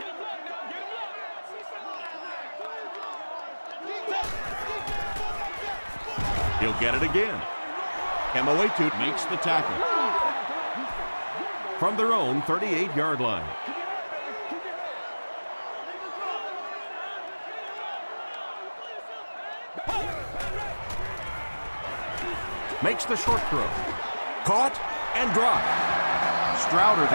He'll get it again. Emoetu Makes the tackle. from their own 38-yard line. Makes the short throw. Caught and dropped. Strouder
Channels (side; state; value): both; inverted; correlation -1.00